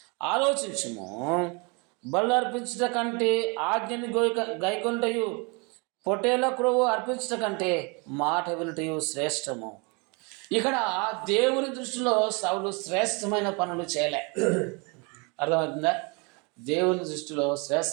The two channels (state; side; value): quieter; left; 31.0 dB